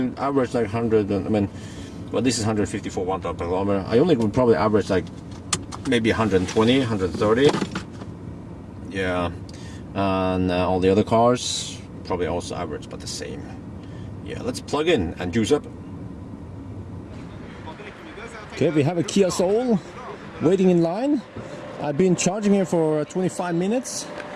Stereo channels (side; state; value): both; identical; correlation 1.00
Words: average like 100, I mean, well, this is 154 watt per kilometer. I only would probably average like maybe 120, 130. Yeah, and all the other cars probably also average about the same. Yeah, let's plug in and juice up. Okay, we have a Kia Soul waiting in line. I've been charging here for 25 minutes,